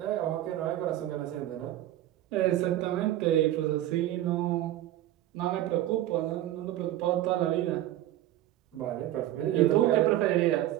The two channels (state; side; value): quieter; left; 13.8 dB